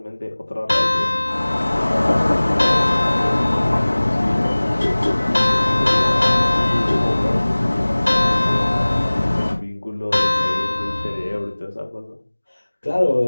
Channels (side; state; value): both; inverted; correlation -1.00